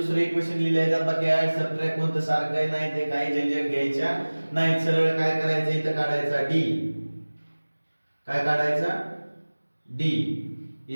इक्वेशन लिहिले जातात. बाकी ऍड सबट्रॅक्ट कोणतं सारखं आहे नाही, ते काही झंझट घ्यायच्या नाही. सरळ काय करायचं, इथं काढायचा d. काय काढायचा, d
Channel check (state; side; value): inverted; both; correlation -1.00